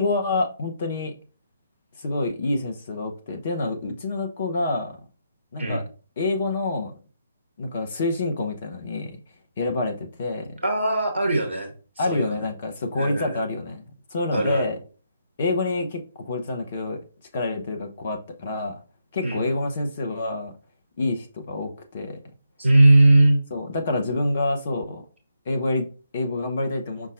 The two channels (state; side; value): inverted; both; correlation -0.82